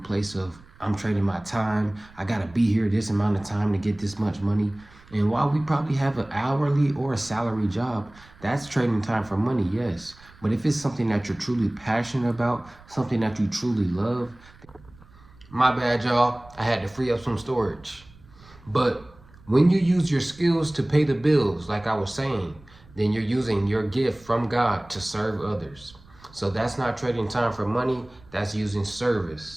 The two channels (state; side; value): noise; right; rumble, 25 dB below the sound